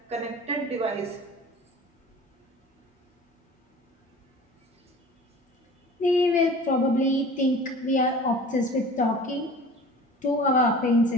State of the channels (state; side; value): normal; both; correlation 0.42